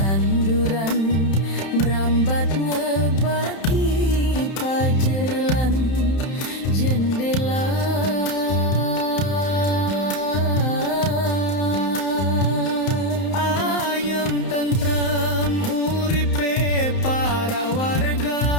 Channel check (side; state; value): right; late; 31 ms